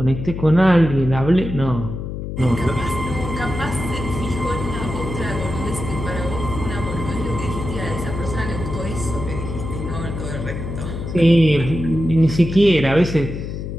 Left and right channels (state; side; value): noise; left; hum, 6 dB below the sound